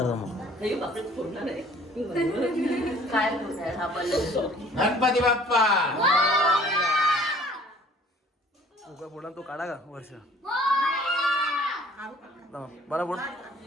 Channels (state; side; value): normal; both; correlation 0.53